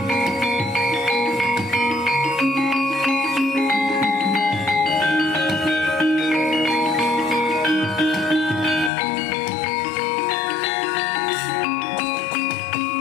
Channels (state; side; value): drops out; right; at 8.9 s